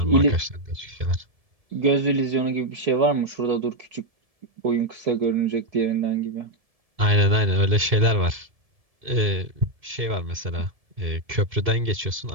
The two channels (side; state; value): left; late; 1.7 ms